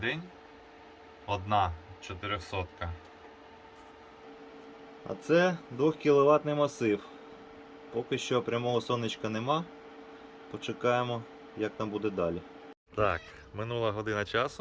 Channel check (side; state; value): both; identical; correlation 1.00